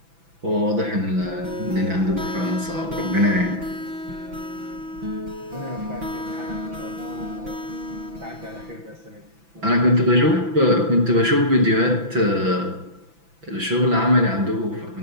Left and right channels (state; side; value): late; left; 6.0 ms